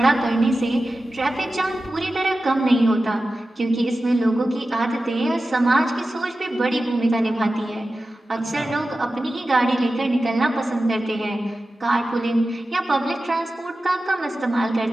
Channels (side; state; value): both; normal; correlation 0.94